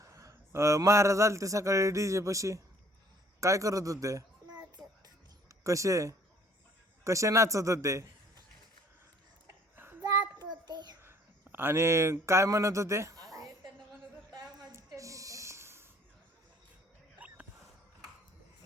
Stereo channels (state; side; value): normal; both; correlation 0.58